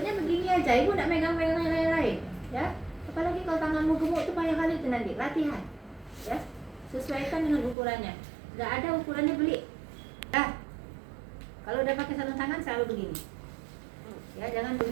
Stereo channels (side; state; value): left; drops out; at 7.8 s